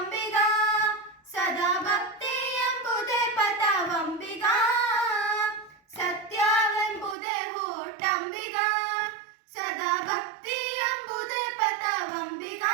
ಸದಾ ಭಕ್ತಿ ಎಂಬುದೇ ಪಥವಂಬಿಗ. ಸತ್ಯವೆಂಬುದೇ ಹೂಟಂಬಿಗ, ಸದಾ ಭಕ್ತಿ ಎಂಬುದೇ ಪಥವಂಬಿಗ.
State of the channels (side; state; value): left; drops out; at 7.2 s